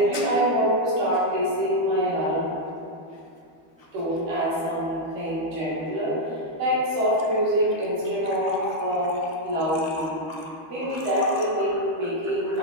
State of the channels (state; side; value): late; left; 12 ms